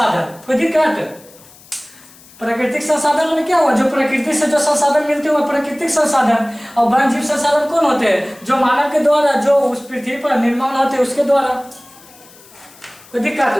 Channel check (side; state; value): left; noise; hiss, 24 dB below the sound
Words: कोई दिक्कत? प्राकृतिक संसाधन में क्या हुआ? जो प्रकृति से जो संसाधन मिलते हैं वो प्राकृतिक संसाधन। और वन्य जीव संसाधन कौन होते हैं? जो मानव के द्वारा, जो उस पृथ्वी पर निर्माण होते हैं उसके द्वारा। कोई